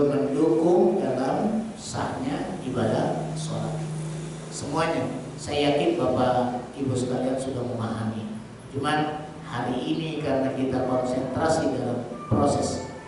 mendukung dalam sahnya ibadah sholat. Semuanya, saya yakin Bapak Ibu sekalian sudah memahami. Cuman hari ini karena kita konsentrasi dalam proses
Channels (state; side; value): identical; both; correlation 1.00